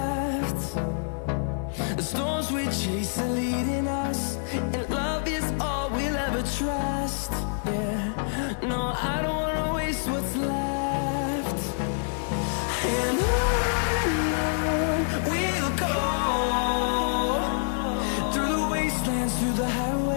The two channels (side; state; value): right; silent; digital silence